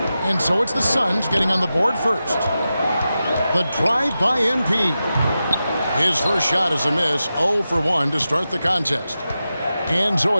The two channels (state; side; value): inverted; both; correlation -0.92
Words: And so it's the Suns getting on the board first. The drive by MP. His first shot is a miss, 0 for 1 to start the contest. And so